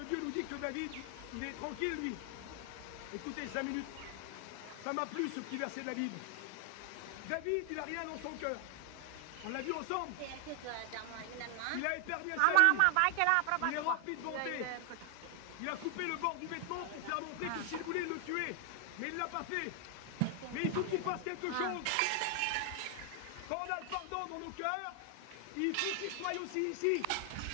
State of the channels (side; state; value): both; different; correlation 0.00